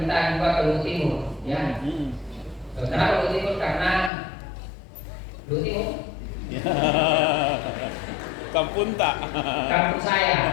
juga ke Luhut Timur, ya. Kenapa Luhut Timur? Karena Luhut Timur kampung tak? Kampung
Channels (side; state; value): right; drops out; at 4.1 s